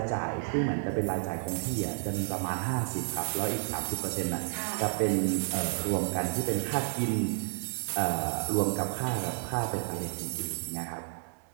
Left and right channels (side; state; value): left; silent; 57 dB below the other